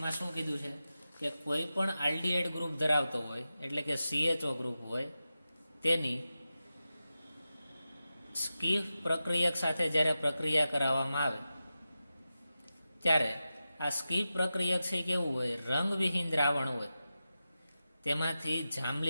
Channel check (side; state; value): both; inverted; correlation -0.92